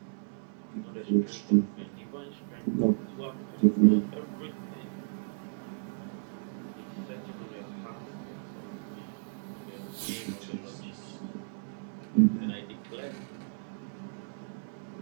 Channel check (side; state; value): left; silent; 55 dB below the other